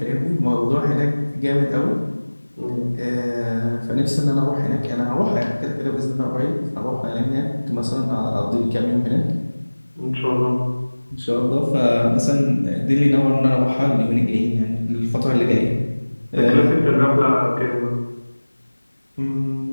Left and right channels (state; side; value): inverted; both; correlation -1.00